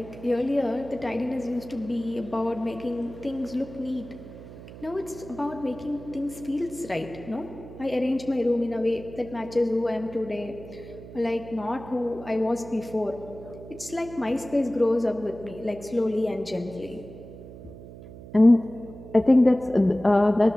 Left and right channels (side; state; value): right; noise; hum, 15 dB below the sound